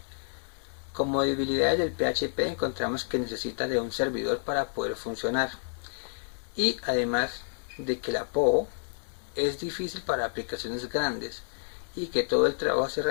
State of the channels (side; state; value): right; silent; digital silence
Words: Como debilidades del PHP encontramos que necesita de un servidor para poder funcionar y además de que la POO es difícil para aplicaciones grandes y que todo el trabajo se